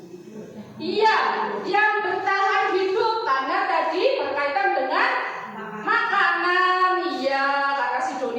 Iya, yang bertahan hidup karena tadi berkaitan dengan makanan. Iya, karena si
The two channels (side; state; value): both; identical; correlation 1.00